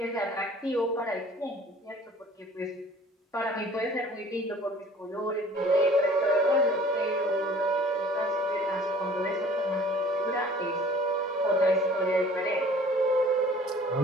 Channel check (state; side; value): normal; both; correlation 0.50